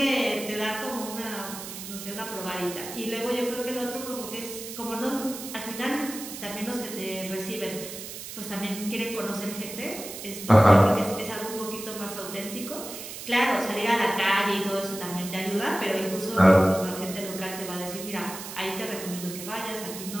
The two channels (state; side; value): noise; right; hiss, 10 dB below the sound